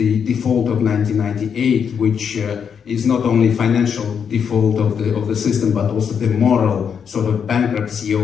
default of 1998, which is not only financial default of the system, but also the moral sort of bankruptcy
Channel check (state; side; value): quieter; right; 7.2 dB